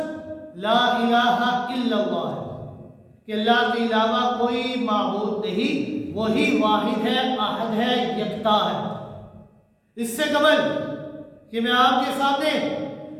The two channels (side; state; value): both; identical; correlation 1.00